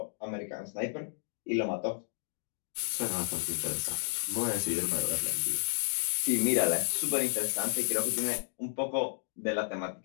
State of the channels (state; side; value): silent; right; digital silence